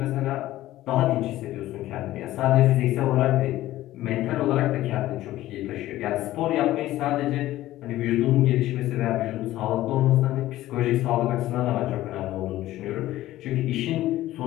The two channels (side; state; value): right; quieter; 15.2 dB